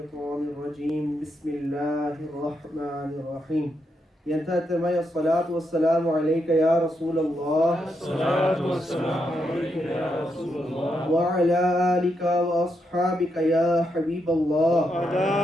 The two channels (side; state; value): both; normal; correlation 0.82